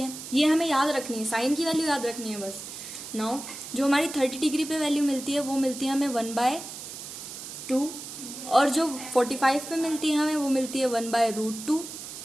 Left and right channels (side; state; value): right; noise; hiss, 10 dB below the sound